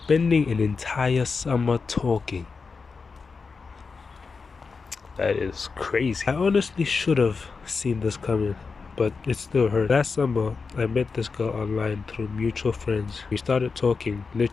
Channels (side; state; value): right; quieter; 4.8 dB